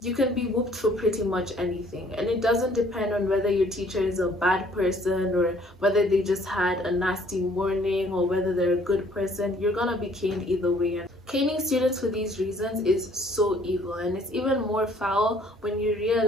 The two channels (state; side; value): normal; both; correlation 0.59